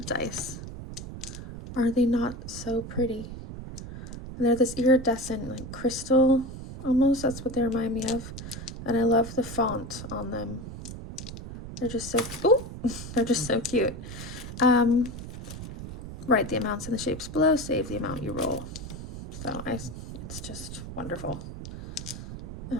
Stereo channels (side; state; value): right; noise; rumble, 10 dB below the sound